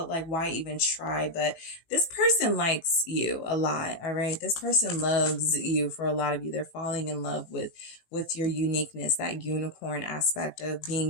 like, why even try? But this person likes you a lot, all right? This person loves you. For a lot of you, they're falling in love with your uniqueness, that unicorn aspect of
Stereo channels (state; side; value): late; right; 18 ms